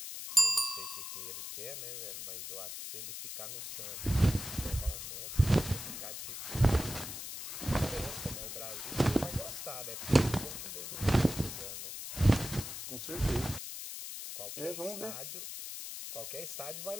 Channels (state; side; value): noise; left; hiss, 7 dB below the sound